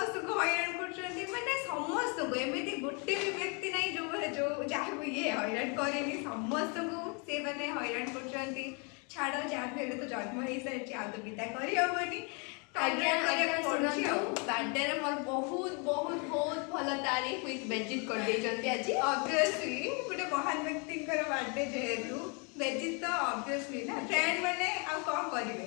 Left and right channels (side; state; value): right; quieter; 34.2 dB